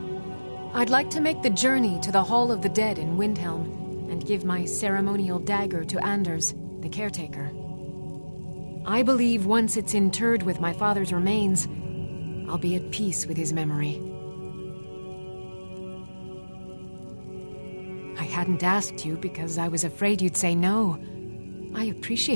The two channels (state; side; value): inverted; both; correlation -1.00